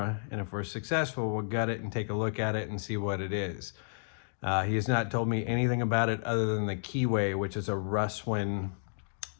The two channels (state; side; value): silent; right; digital silence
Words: and if we're successful, we'll gut it and take a look at it and see what it is. He has not told me anything about it other than the keyway, which is a Russwin